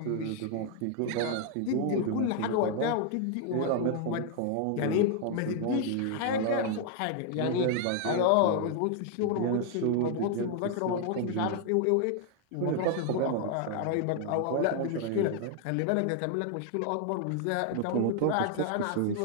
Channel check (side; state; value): both; different; correlation 0.00